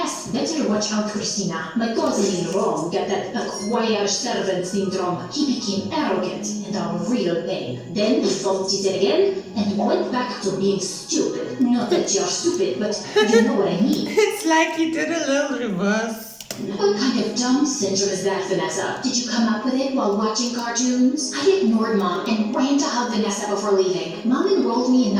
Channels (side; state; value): both; identical; correlation 1.00